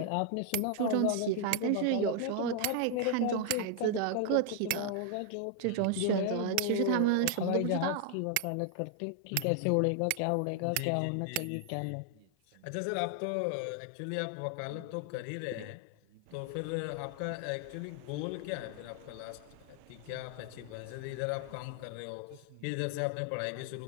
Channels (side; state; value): both; different; correlation 0.00